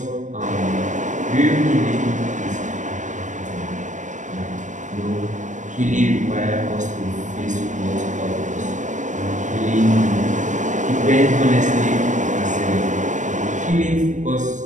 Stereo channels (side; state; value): left; late; 0.36 ms